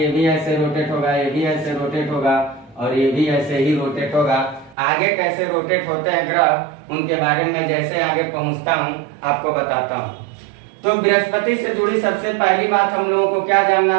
ये भी ऐसे रोटेट होगा, ये भी ऐसे रोटेट होगा और ये भी ऐसे ही रोटेट होगा। आगे कैसे रोटेट होते हैं ग्रह, उनके बारे में जैसे आगे पहुंचता हूँ आपको बताता हूँ। तो बृहस्पति से जुड़ी सबसे पहली बात हम लोगों को क्या जानना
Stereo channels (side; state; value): left; drops out; at 4.8 s